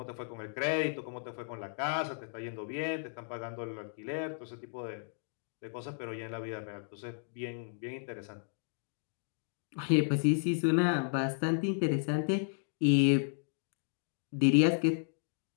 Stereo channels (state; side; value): silent; right; digital silence